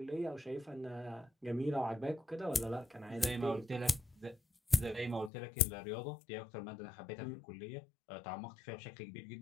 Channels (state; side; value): drops out; right; at 5.3 s